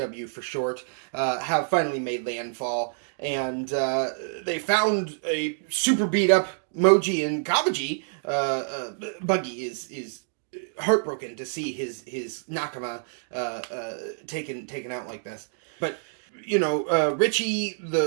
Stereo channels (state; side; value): silent; left; digital silence